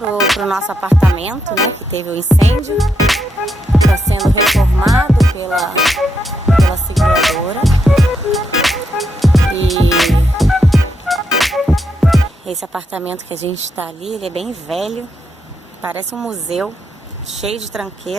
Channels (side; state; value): both; normal; correlation 0.81